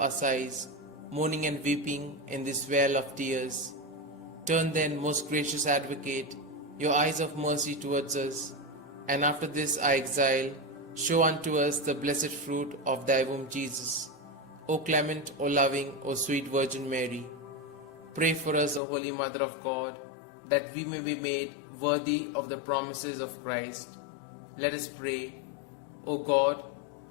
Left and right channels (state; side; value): drops out; right; at 18.8 s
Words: sighs, mourning and weeping in this vale of tears. Turn then, most gracious Advocate, your eyes of mercy towards us, and after this our exile, show unto us the blessed fruit of thy womb, Jesus. O clement, O loving, O sweet Virgin Mary, pray for us, O Holy Mother of God, that we may be made worthy of the promises of Christ. Let us pray. O God,